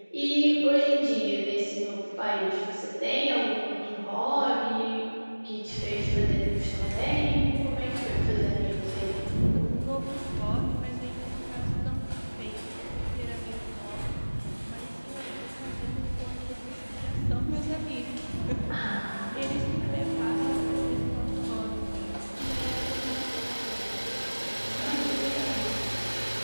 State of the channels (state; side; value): inverted; both; correlation -1.00